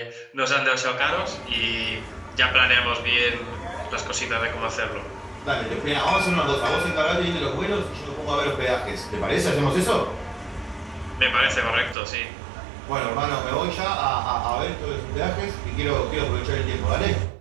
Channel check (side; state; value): left; drops out; at 12.0 s